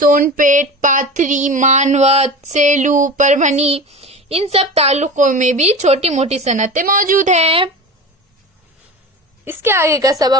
पाथरी, मानवत, सेलू, परभनी, इन सब तालुकों में भी छोटी मोटी सनतें मौजूद हैं। इसके आगे का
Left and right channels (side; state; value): both; normal; correlation 0.31